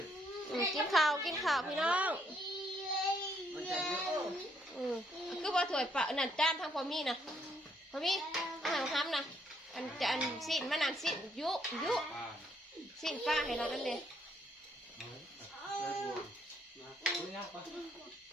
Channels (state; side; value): normal; both; correlation 0.71